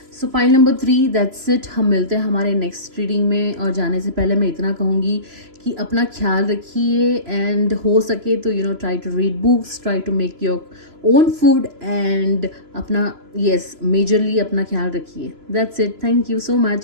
So point number 3, that's it. हम मिलते हैं हमारे नेक्स्ट रीडिंग में, और जाने से पहले मैं इतना कहूँगी कि अपना ख्याल रखिए, एंड हो सके तो try to read books, try to make your own food, and अपना मेजरली अपना ख्याल रखिए. That's it. Thank you so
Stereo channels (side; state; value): left; late; 3.0 ms